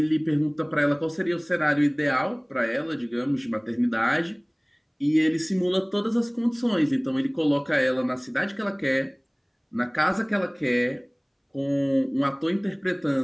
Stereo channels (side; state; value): both; identical; correlation 1.00